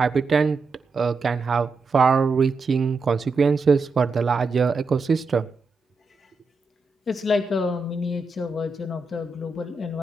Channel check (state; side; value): quieter; left; 3.8 dB